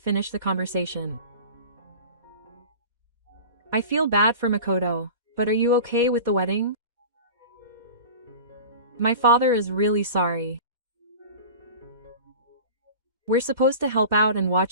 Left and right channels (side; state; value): left; late; 2.1 ms